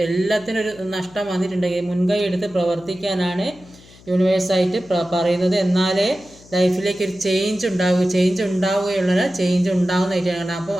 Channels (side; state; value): left; noise; hum, 24 dB below the sound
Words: എല്ലാത്തിനും ഒരു നഷ്ടം വന്നിട്ടുണ്ടെങ്കിൽ മുൻകൈ എടുത്ത് പ്രവർത്തിക്കാനാണ് യൂണിവേഴ്സായിട്ട് പറയുന്നത്. എന്നാലേ ലൈഫിലേക്ക് ഒരു ചേഞ്ച് ഉണ്ടാവുകയുള്ളൂ, ചേഞ്ച് ഉണ്ടാകുന്നതായിട്ടാണ്. അപ്പോൾ